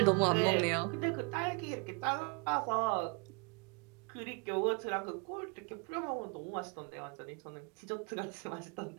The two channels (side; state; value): left; quieter; 32.9 dB